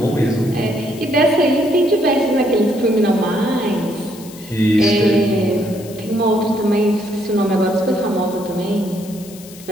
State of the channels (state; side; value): noise; left; hiss, 19 dB below the sound